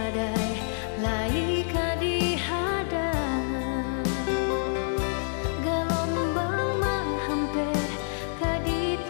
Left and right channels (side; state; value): right; silent; 59 dB below the other